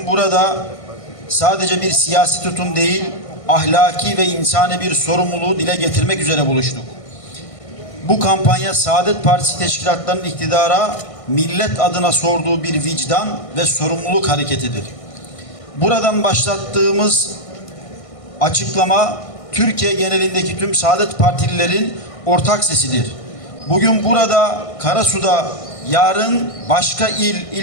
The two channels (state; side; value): late; right; 1.5 ms